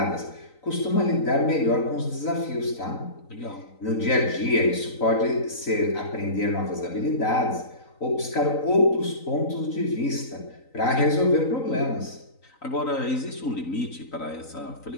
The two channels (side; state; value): right; late; 3.9 ms